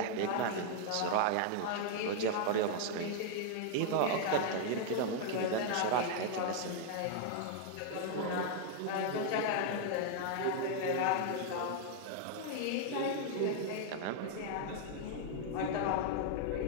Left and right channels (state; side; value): different; both; correlation 0.00